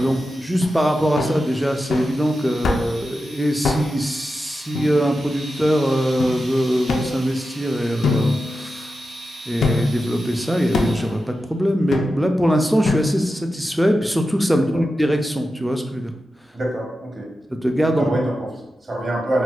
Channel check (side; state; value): both; normal; correlation 0.91